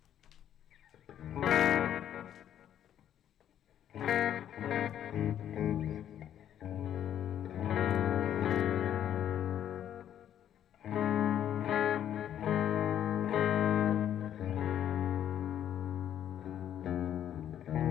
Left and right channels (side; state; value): right; quieter; 10.4 dB